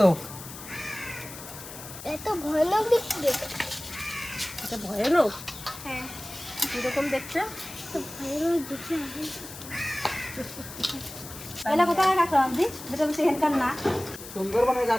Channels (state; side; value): noise; left; hiss, 13 dB below the sound